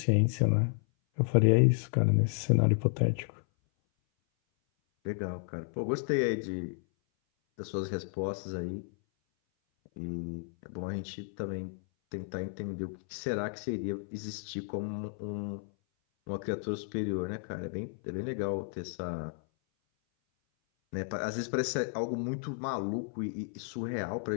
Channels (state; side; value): silent; right; 56 dB below the other